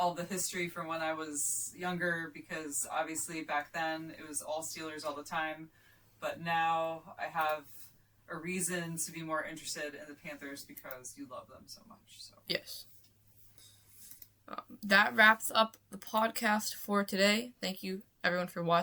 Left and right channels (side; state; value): both; identical; correlation 1.00